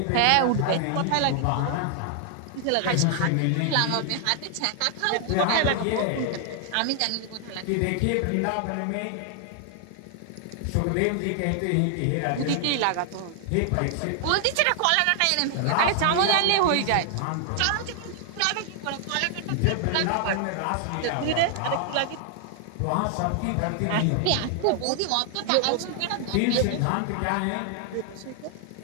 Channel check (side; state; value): both; different; correlation 0.00